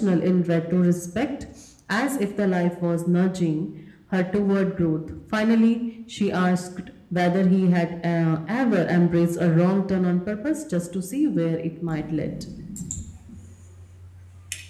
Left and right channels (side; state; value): both; identical; correlation 1.00